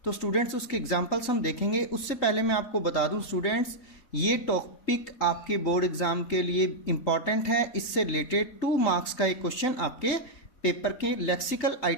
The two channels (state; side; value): late; right; 4.2 ms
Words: तो स्टूडेंट्स, उसके एग्जांपल्स हम देखेंगे. उससे पहले मैं आपको बता दूं स्टूडेंट्स, ये टॉपिक आपके बोर्ड एग्जाम के लिए इम्पॉर्टेंट है. इससे रिलेटेड 2 मार्क्स का एक क्वेश्चन आपके पेपर के लेक्सिकल